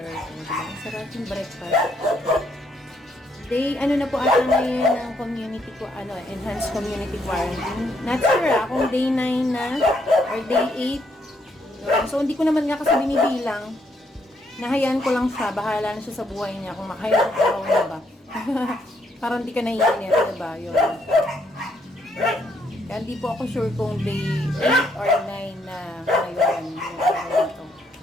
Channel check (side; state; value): both; normal; correlation 0.73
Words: Ang sarap yung breakfast. Day, ano na po ata ngayon ng community ko, enhanced community quarantine. Not sure kung day 9 na or day 8. So, hindi ko naman nga kasi binibilang. Nahayaan ko lang siya. Bahala na siya sa buhay niya kung makahayaan ko na ba. Parang hindi ka naiinit, diba? Yun. Kaya hindi po ako sure kung day 8 or 9 na ngayon. Yung araw nito.